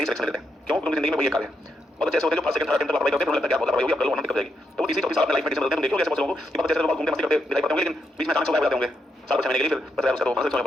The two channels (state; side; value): normal; both; correlation 0.81